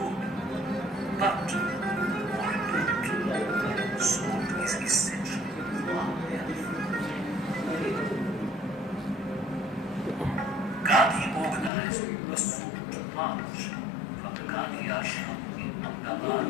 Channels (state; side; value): drops out; right; at 11.7 s